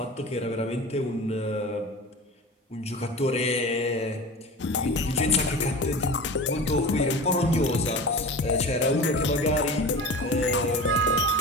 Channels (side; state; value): both; normal; correlation 0.33